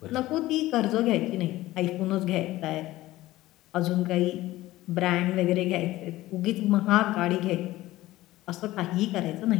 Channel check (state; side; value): quieter; right; 16.8 dB